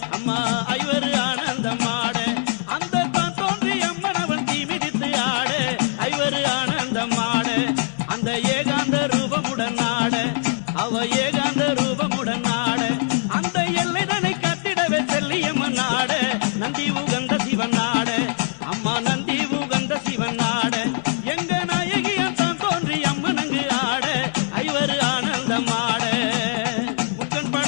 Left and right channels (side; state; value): right; silent; 63 dB below the other